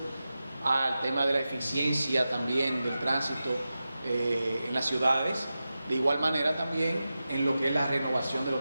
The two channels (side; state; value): both; inverted; correlation -0.93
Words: al tema de la eficiencia también del tránsito en las ciudades, de igual manera también en lo que es la renovación de los